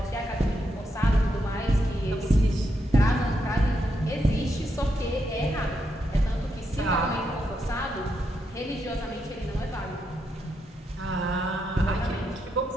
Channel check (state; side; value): normal; both; correlation 0.82